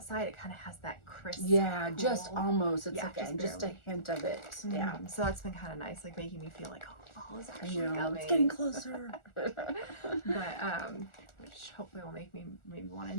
it kind of has that crisp. Yeah, cool. just almost. It's just a barely. hint of it. Mm-hmm. Yeah. So that's been kind of nice, like making me feel like, oh, fall is actually coming. It's getting closer. But which hopefully will make me maybe want to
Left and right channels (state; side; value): late; right; 1.4 ms